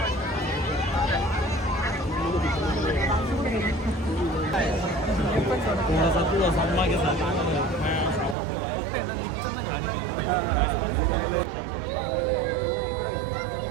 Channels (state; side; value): drops out; left; at 8.3 s